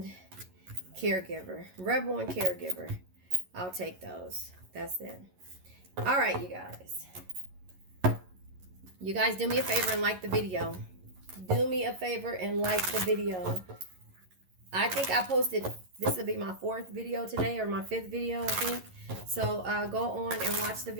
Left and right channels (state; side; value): late; left; 11 ms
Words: caregiver, rebel and caregiver, I'll take those. That's it. All right, you guys do me a favor and like the video. Do me a favor and like the video. I think I posted, this will be my 4th video today, or my 5th video, I think. So go on and watch the